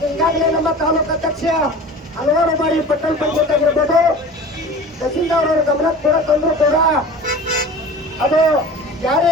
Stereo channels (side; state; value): both; normal; correlation 0.38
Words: ಈಗಾಗಲೇ ನಮ್ಮ ತಾಲೂಕು ಅಧ್ಯಕ್ಷ ಹಲವಾರು ಬಾರಿ ಪಟ್ಟಣ ಪಂಚಾಯತ್ ಆಗಿರ್ಬೋದು ತಹಸೀಲ್ದಾರ್ ಅವರ ಗಮನಕ್ಕೆ ಕೂಡ ತಂದ್ರು ಕೂಡ ಅದು ಜಾರಿ